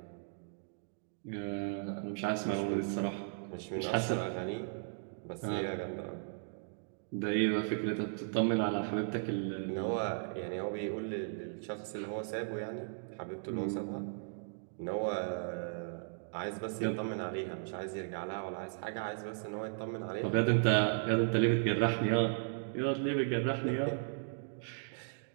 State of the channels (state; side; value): silent; left; digital silence